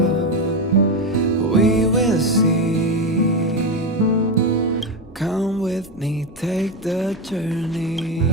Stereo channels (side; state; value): both; normal; correlation 0.13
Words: We will see. Come with me, take the journey.